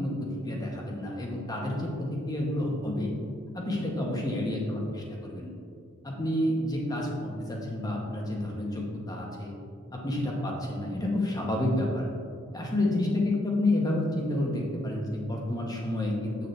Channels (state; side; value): normal; both; correlation 0.76